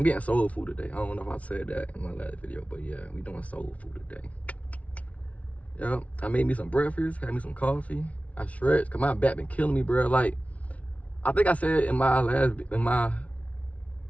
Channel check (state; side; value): late; right; 0.066 ms